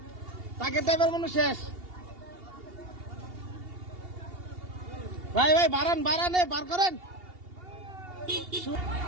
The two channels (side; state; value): left; late; 2.8 ms